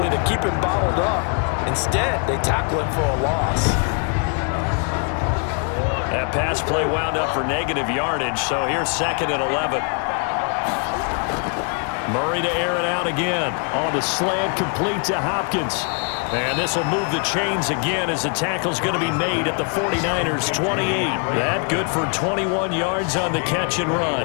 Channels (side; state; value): right; quieter; 39.0 dB